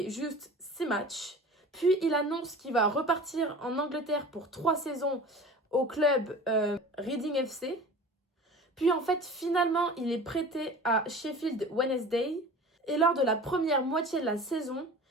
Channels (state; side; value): normal; both; correlation 0.39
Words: juste 6 matchs. Puis, il annonce qu'il va repartir en Angleterre pour 3 saisons au club Reading FC. Puis, en fait, finalement, il est prêté à Sheffield Wednesday. Et lors de la première moitié de la saison,